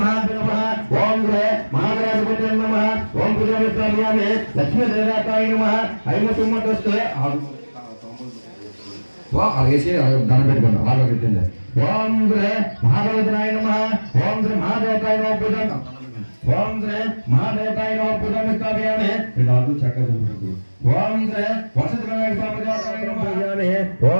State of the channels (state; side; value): inverted; both; correlation -1.00